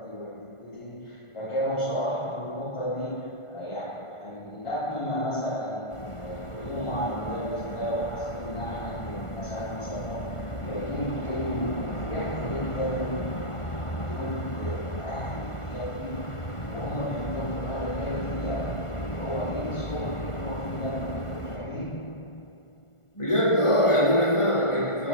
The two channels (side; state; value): right; late; 1.4 ms